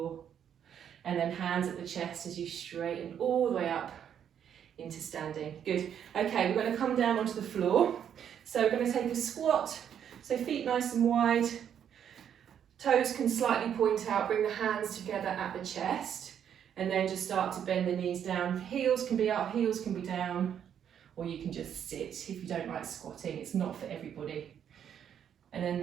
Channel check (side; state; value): left; quieter; 8.9 dB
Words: And then hands at the chest as you straighten all the way up into standing. Good. Okay, we're going to come down onto the floor. So we're going to take a squat. So feet nice and wide. Toes can slightly point out. Bring the hands together at the chest. And then just start to bend the knees down. Heels can be up, heels can be down. Or you can just sit if you don't like squatting. It's not for everybody. And then